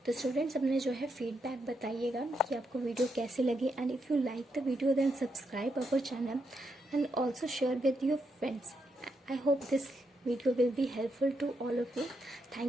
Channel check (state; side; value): normal; both; correlation 0.80